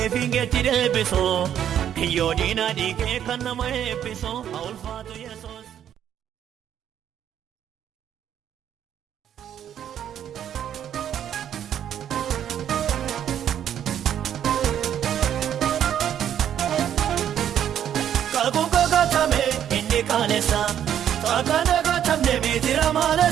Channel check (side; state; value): left; quieter; 9.9 dB